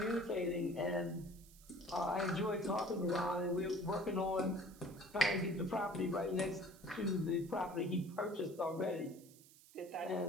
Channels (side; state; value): right; noise; hiss, 23 dB below the sound